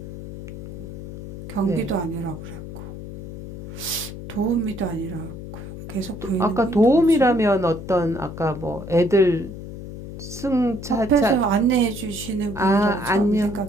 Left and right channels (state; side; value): noise; left; hum, 11 dB below the sound